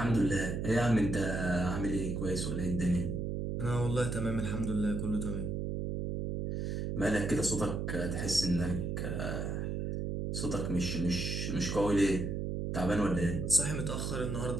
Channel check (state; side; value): noise; right; hum, 2 dB below the sound